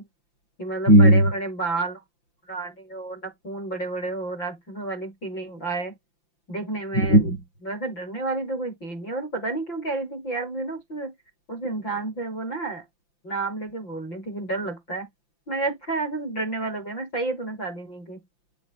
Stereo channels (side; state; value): right; late; 5.9 ms